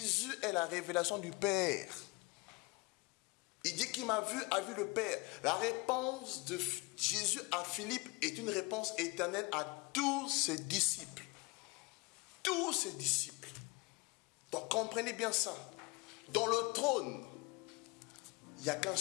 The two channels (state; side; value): quieter; right; 26.4 dB